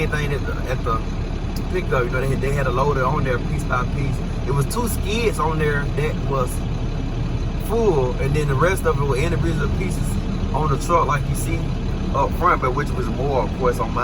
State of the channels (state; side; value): identical; both; correlation 1.00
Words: thing at the pickup. They had a loader on there piece by piece. It was 2 skids on there that was full, and then the rest of it were individual pieces on the truck, like you see up front, but which was more, of course, on